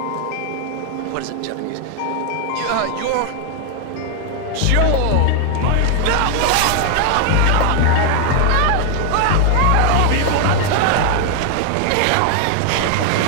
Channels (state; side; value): different; both; correlation 0.00